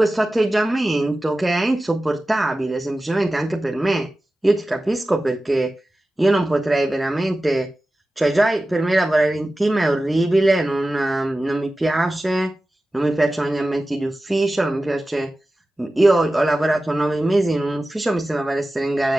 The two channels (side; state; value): both; normal; correlation 0.95